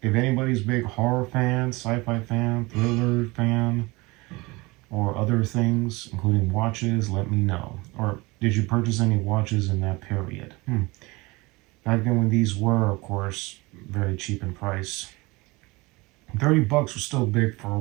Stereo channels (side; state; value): left; quieter; 23.6 dB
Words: if anybody's big horror fan, sci-fi fan, thriller fan, or other things, including watches, let me know. Or did you purchase any watches in that period? Back then when these were, of course, very cheap in price. $30 was still big for a